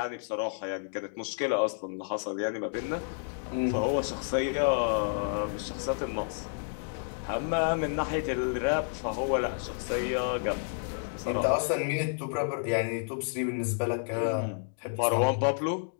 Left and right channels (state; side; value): silent; right; digital silence